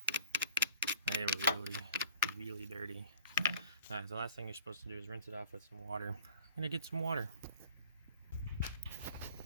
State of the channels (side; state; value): both; inverted; correlation -0.49